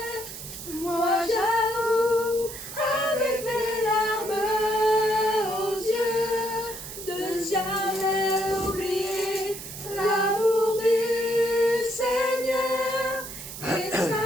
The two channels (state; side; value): noise; right; hiss, 11 dB below the sound